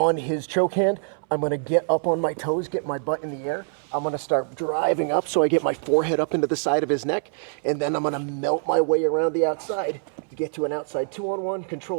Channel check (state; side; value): silent; left; 62 dB below the other